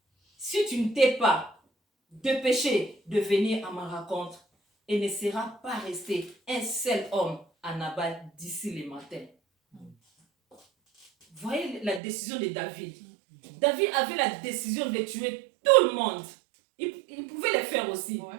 Si tu ne t'es pas dépêché de venir à ma rencontre, il ne sera pas resté un seul homme à Nabal d'ici le matin. Voyez la décision de David. David avait la décision de tuer tout le monde. Il pouvait le faire aussi. Ouais.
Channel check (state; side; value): drops out; left; at 12.0 s